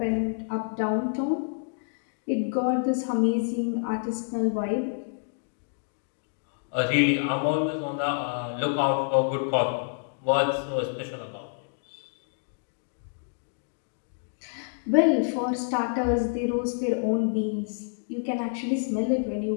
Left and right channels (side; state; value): right; silent; digital silence